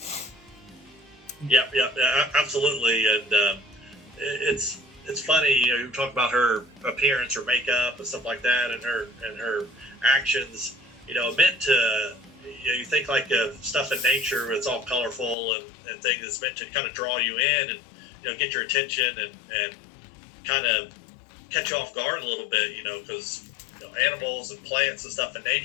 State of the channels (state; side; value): drops out; right; at 15.4 s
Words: Yeah, absolutely. And it's it's funny, you talk about her appearance, her makeup, and stuff like that, and her actions. Meant to. You think like stuff in nature, it's all colorful and things. It's meant to kind of draw you in and get your attention and kind of catch you off guard a little bit. Because animals and plants and stuff in